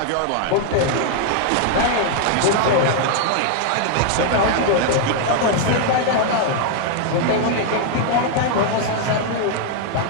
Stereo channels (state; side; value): different; both; correlation 0.00